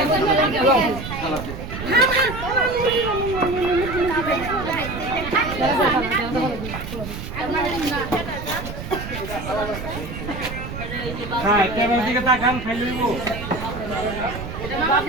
হ্যাঁ ক্যামেরার দিকে তাকান খাইলে দিব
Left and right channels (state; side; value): noise; right; rumble, 8 dB below the sound